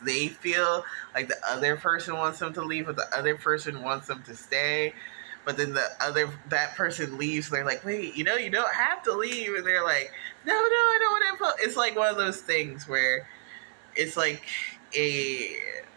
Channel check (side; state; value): left; silent; 56 dB below the other